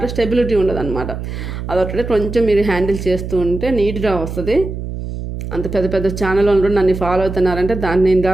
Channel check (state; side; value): noise; right; hum, 7 dB below the sound